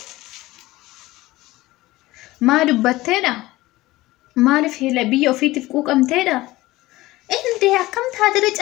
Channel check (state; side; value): quieter; right; 18.4 dB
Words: maa dubbatteedha maaliif hela biyya ofiitiif quuqamteedha inde akkam taatire